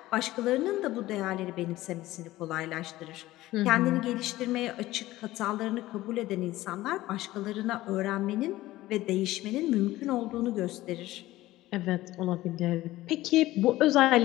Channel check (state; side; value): quieter; right; 16.7 dB